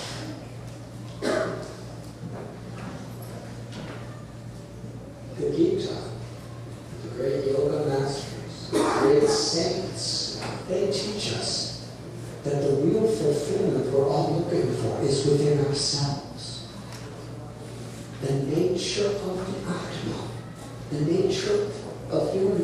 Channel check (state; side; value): identical; both; correlation 1.00